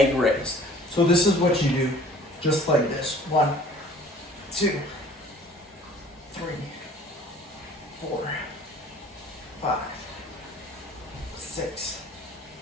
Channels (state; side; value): normal; both; correlation 0.51